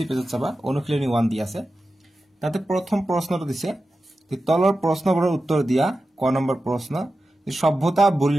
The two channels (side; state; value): both; normal; correlation 0.92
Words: পেজত চাবা অনুশীলনী 1 দি আছে তাতে প্ৰথম প্ৰশ্নটো দিছে তলৰ প্ৰশ্নবোৰৰ উত্তৰ দিয়া ক নম্বৰ প্ৰশ্ন সভ্যতা